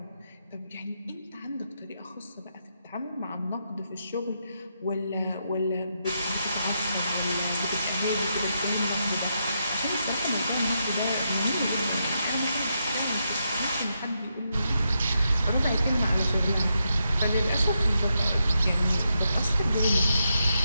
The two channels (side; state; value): both; inverted; correlation -0.82